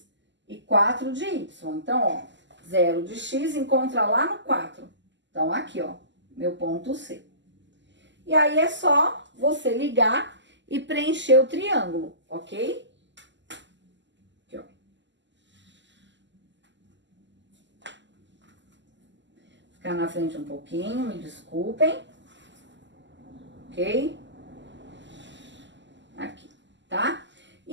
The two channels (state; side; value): late; left; 0.53 ms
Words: e 4 de Y. Então, ó, 0 de X encontra lá no 4. Então, aqui, ó, meu ponto C. E aí, é só você ligar e preencher o triângulo, ok? Aqui, ó. Ficar na frente um pouquinho, me desculpem. Ok? Aqui, tá?